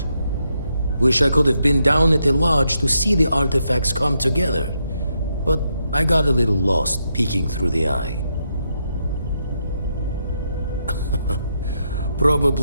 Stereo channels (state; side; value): inverted; both; correlation -0.80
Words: Wish I could have been down at the lodge to see the artifacts come together. But I got a little lost peeking through the eye.